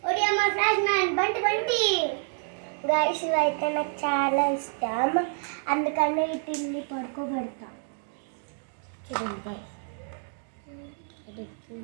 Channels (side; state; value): left; silent; 59 dB below the other